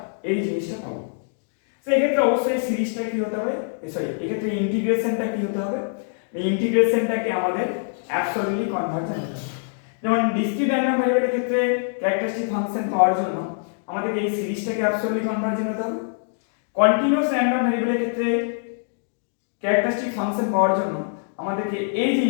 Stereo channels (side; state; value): right; silent; digital silence